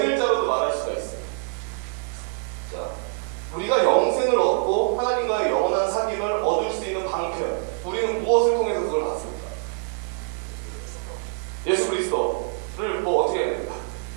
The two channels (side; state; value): left; silent; digital silence